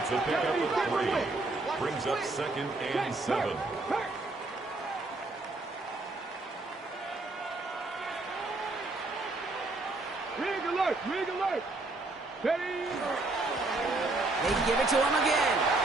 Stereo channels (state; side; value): quieter; left; 3.1 dB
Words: a pickup of 3. Brings up second and 7. Rig alert! Rig alert! Steady! They give it to him again.